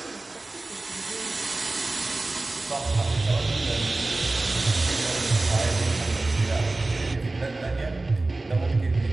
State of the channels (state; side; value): quieter; left; 3.1 dB